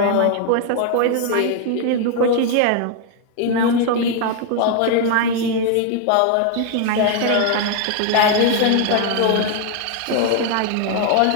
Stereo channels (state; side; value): different; both; correlation 0.00